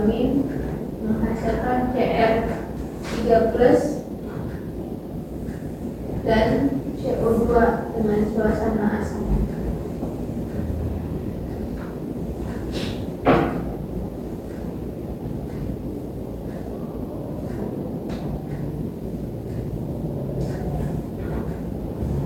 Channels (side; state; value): both; identical; correlation 1.00